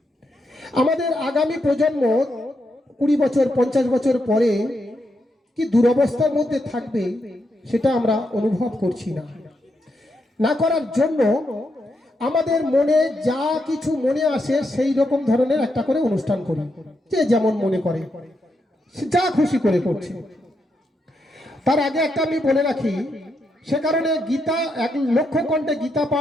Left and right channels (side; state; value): both; normal; correlation 0.82